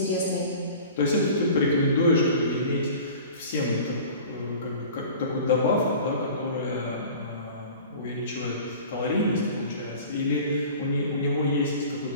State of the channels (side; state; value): both; inverted; correlation -0.41